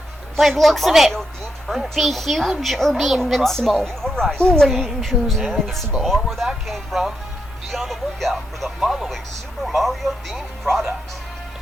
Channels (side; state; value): both; normal; correlation 0.83